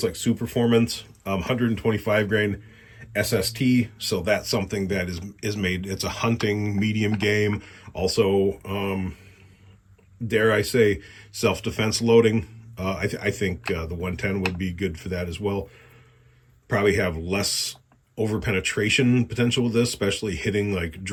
like Super Performance, 125 grain SST. So that's something that is made. It's a hunting medium game. Also, dare I say, self-defense loading. I think the 110 would be good for that as well. Probably have less over penetration potential with this, especially hitting like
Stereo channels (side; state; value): both; identical; correlation 1.00